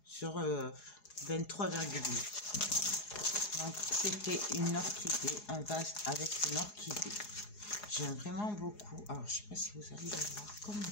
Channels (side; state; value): right; late; 4.8 ms